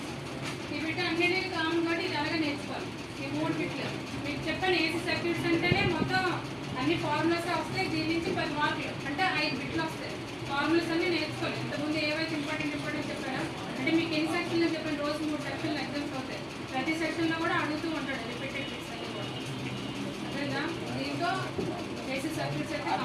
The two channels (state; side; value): identical; both; correlation 1.00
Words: ఈ బిట్ అన్నిటికీ కామన్ కాబట్టి ఇది అలాగే నేర్చుకోవాలి. ఈ మూడు బిట్లు మీకు చెప్పాను. ఏసీ సర్క్యూట్స్ అంటేనే మొత్తం అన్ని ఫార్ములాస్ వస్తాయి. దీని నుంచి 10 మార్కులు అంటే 5 బిట్లు వస్తాయి. ఫార్ములాస్ అన్ని నేర్చుకోవాలి. ఇంతకుముందు ఏవైతే ఇంపార్టెంట్ చెప్పారో, అంటే మీకు ఎన్ని సెక్షన్లు చెప్పాను, రోజు 3 సెక్షన్లు ఎగ్జామ్స్ అవుతాయి. ప్రతి సెక్షన్లో కూడా అడుగుతూ ఉంటాడు రిపీటెడ్ బిట్స్ అన్ని కూడా, అర్థమైందా? దీంతో ఏసీ సర్క్యూట్స్ అయితే